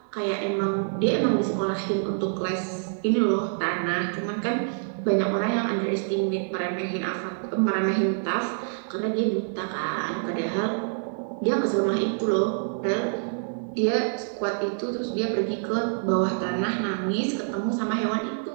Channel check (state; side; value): silent; left; digital silence